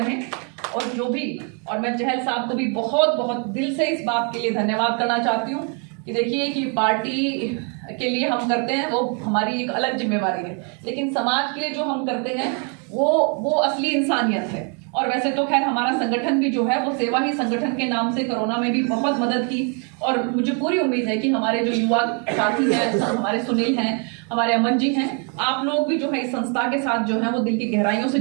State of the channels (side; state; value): left; quieter; 38.3 dB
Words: और मैं चहल साहब को भी बहुत बहुत दिल से इस बात के लिए धन्यवाद करना चाहती हूँ कि देखिए कि पार्टी के लिए हम करते हैं वो हमारी एक अलग जिम्मेवारी है, लेकिन समाज के लिए जो हम करते हैं वो असली इंसानियत है। और वैसे तो खैर हमारा संगठन भी जो है वो सेवा ही संगठन के नाम से कोरोना में भी बहुत मदद की, और मुझे पूरी उम्मीद है कि हमारे जो युवा साथी हैं, हमारे सुनील हैं, हमारे अमन जी हैं, आप लोग भी जो है इस संस्था के साथ जो है वो दिल की गहराइयों से